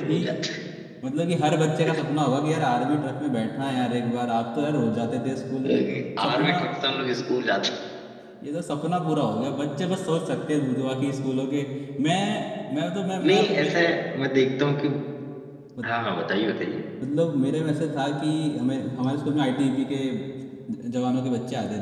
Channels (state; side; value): identical; both; correlation 1.00